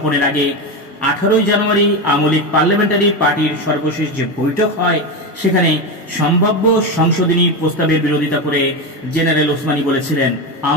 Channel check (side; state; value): both; normal; correlation 0.16